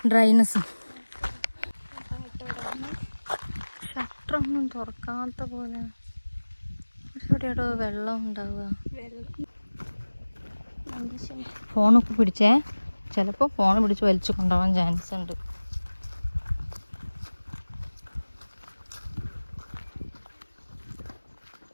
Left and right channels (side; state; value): both; inverted; correlation -1.00